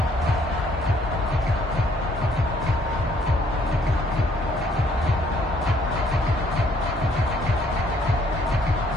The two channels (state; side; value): normal; both; correlation 0.64